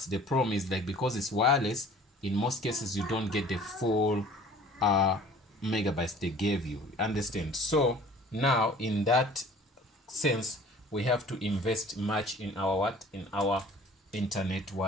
the problem is, like, because it's wireless, in most cases you don't get the full megabytes they gave you. Understand? So now in that sense, we have to invest much in our internet,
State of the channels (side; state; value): both; normal; correlation 0.49